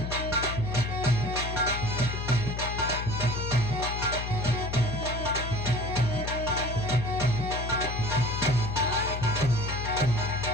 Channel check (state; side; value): noise; left; hum, 5 dB below the sound